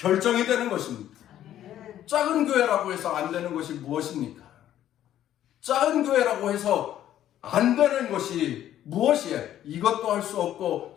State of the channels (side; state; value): right; quieter; 11.8 dB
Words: 되는 것입니다. 작은 교회라고 해서 안 되는 것이 무엇입니까? 작은 교회라고 해서 안 되는 것이 무엇이에요? 이것도 할 수 없고